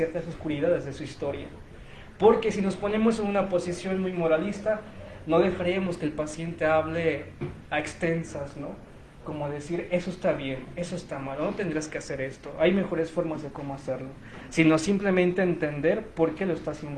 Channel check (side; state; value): both; identical; correlation 1.00